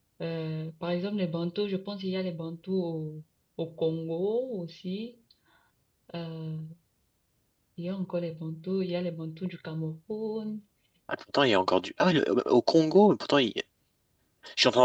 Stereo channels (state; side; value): identical; both; correlation 1.00